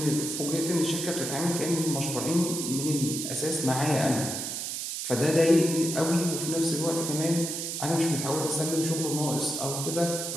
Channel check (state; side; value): noise; right; hiss, 4 dB below the sound